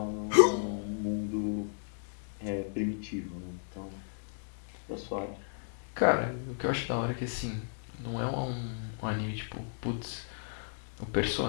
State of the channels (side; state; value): right; silent; digital silence